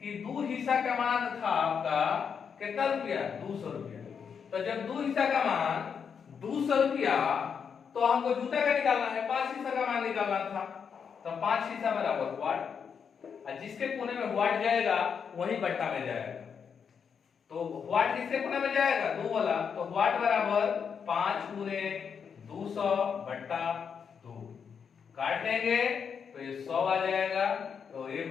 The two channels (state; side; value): quieter; right; 6.8 dB